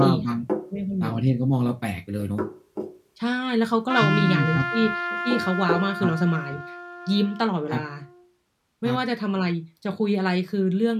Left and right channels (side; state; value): both; identical; correlation 1.00